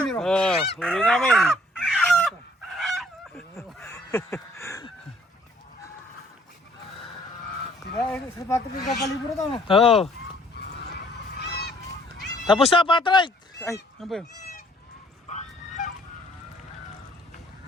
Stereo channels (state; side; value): normal; both; correlation 0.61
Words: Oh, huli namin. Diba, sa patok yung kapalibro ito, no? Oo. Tapos na, Patrick! Ay, ano ba yun?